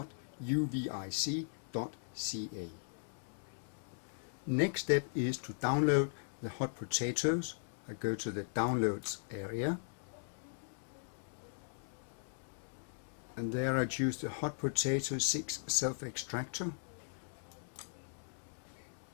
Next step is to download the Hot Potatoes. I go to the Downloads area, and there I choose the Hot Potato 6 self-extractor.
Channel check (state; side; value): silent; right; digital silence